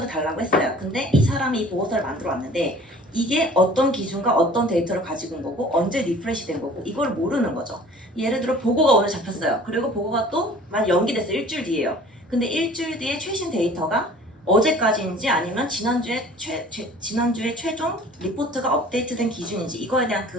달라고 했어요. 근데 이 사람이 이 보고서를 만들어 왔는데 이게 어떤 기준과 어떤 데이터를 가지고 온 거고 언제 리프레시 된 거고 이걸 모르는 거죠. 예를 들어 보고가 오늘 잡혔어요. 그리고 보고가 또 만 연기됐어요. 일주일 뒤에요. 근데 일주일 뒤에 최신 데이터가 어제까지인지 아니면 지난주에 최종 리포트가 업데이트된 기준인지 이거에 대한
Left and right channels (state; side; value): normal; both; correlation 0.48